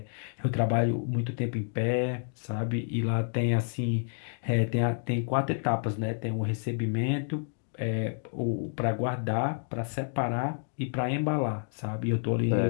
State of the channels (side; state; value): right; silent; digital silence